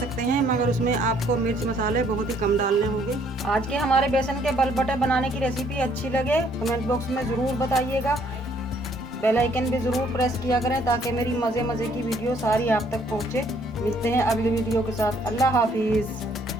हैं, मगर उसमें आपको मिर्च मसाले बहुत ही कम डालने होंगे। आज के हमारे बेसन के बलबटे बनाने की रेसिपी अच्छी लगे कमेंट बॉक्स में ज़रूर बताइएगा। बेल आइकन भी ज़रूर प्रेस किया करें ताकि मेरी मज़े की वीडियो सारी आप तक पहुँचे। मिलते हैं अगली वीडियो के साथ। अल्लाह हाफिज़।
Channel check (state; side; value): normal; both; correlation 0.64